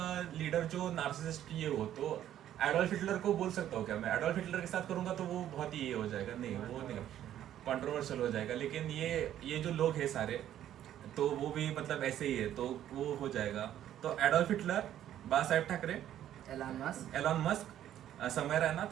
लीडर जो नार्सिसिस्ट ये हो, तो एडोल्फ हिटलर को बोल सकता हूँ क्या मैं? एडोल्फ हिटलर के साथ करूंगा तो वो बहुत ही ये हो जाएगा, नहीं वो नहीं कंट्रोवर्शियल हो जाएगा। लेकिन ये जो लोग हैं सारे, तो वो भी मतलब ऐसे ही है, तो वो हो जाएगा। तो एडोल्फ हिटलर, बाला साहेब ठाकरे, एलॉन मस्क, समय रैना,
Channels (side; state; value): left; quieter; 11.5 dB